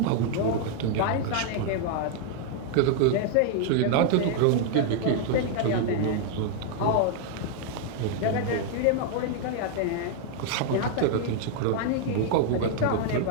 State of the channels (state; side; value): different; both; correlation 0.00